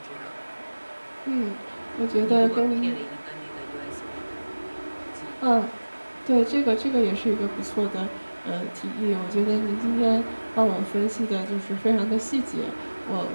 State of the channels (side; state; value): both; inverted; correlation -1.00